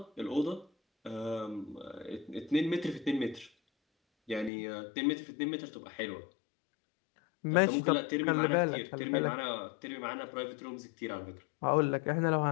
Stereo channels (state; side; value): drops out; right; at 4.5 s